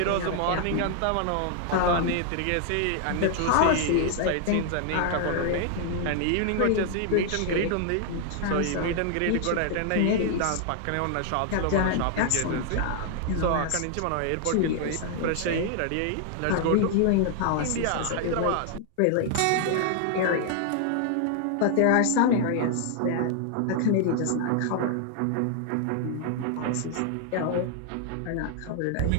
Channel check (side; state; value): both; different; correlation 0.00